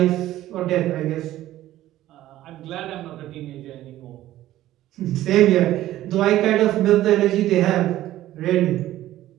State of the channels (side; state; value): left; quieter; 14.3 dB